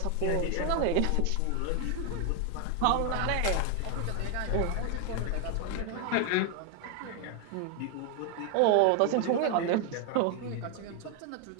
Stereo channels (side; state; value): both; different; correlation 0.00